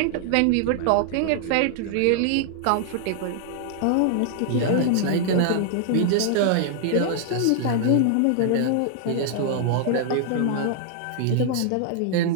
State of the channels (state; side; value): different; both; correlation -0.01